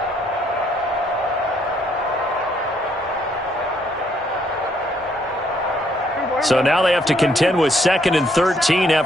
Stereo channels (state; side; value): normal; both; correlation 0.69